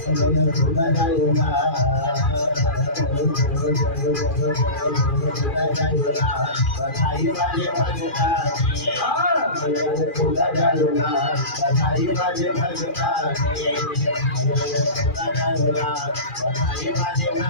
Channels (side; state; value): right; late; 2.4 ms